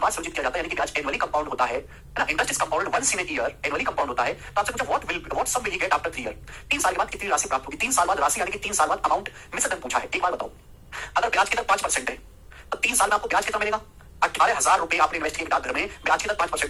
बार संचित किया जाता है, यानी कि ब्याज एनुअली कंपाउंड होता है ना, interest is compound once in a year, annually compound होता है। तो आपसे पूछा what sum will he get after 3 year? 3 साल के बाद कितनी राशि प्राप्त होगी? 3 साल बाद राशि यानी कि 3 साल बाद अमाउंट मिस दर पूछा है। एक बार बताओ, अगर ब्याज की दर 5% है तो 3 साल में आपको ब्याज कितना मिलेगा? 18,000 रुपए आपने इन्वेस्ट किए डाकघर में, ब्याज की दर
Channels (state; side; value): identical; both; correlation 1.00